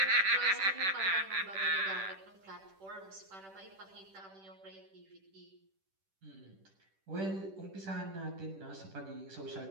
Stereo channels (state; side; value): late; left; 10 ms